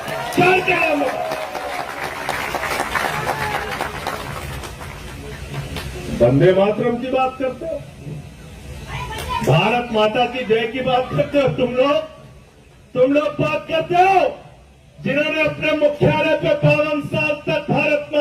4 के नाम बताओ। वंदे मातरम की बात करते हो, भारत माता की जय की बात करते हो, तुम लोग बात करते हो जिन्होंने अपने मुख्यालय पे 52 साल तक भारत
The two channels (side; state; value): both; identical; correlation 1.00